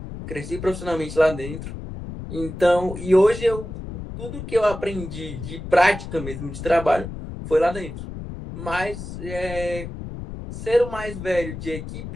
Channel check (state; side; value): noise; left; rumble, 9 dB below the sound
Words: cresci profissionalmente lá dentro. Então, e hoje tudo que eu aprendi de prática mesmo, de trabalho, foi lá dentro. Mas, ser o mais velho de